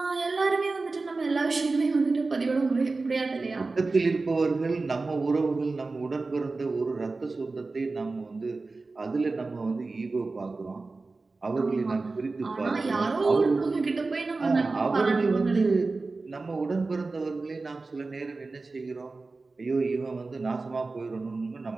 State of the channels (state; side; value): quieter; left; 3.7 dB